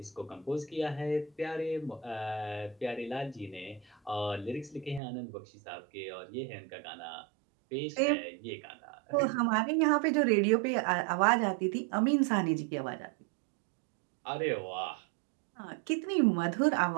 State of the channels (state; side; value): drops out; left; at 5.0 s